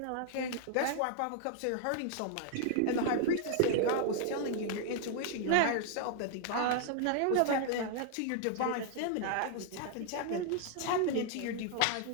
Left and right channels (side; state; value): both; different; correlation 0.00